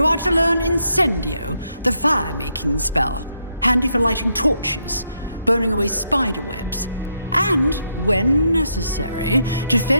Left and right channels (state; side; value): inverted; both; correlation -0.78